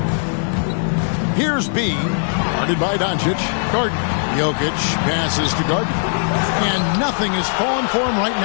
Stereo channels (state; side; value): silent; right; digital silence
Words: Here's B, guarded by Doncic. Gardner. Jokic passes to Gardner. And nothing is falling for him right